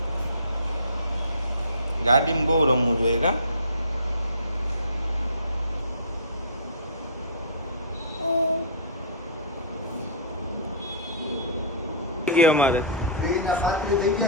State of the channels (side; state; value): both; inverted; correlation -0.33